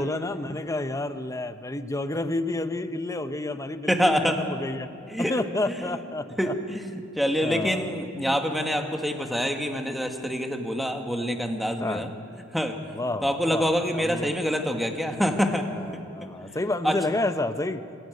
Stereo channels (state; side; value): normal; both; correlation 0.80